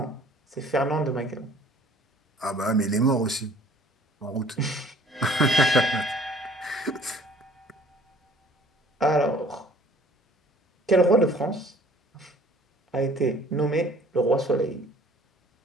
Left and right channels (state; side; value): normal; both; correlation 0.54